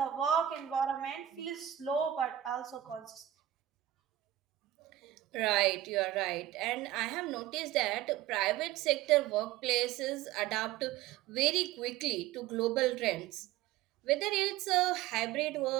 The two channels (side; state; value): left; quieter; 13.1 dB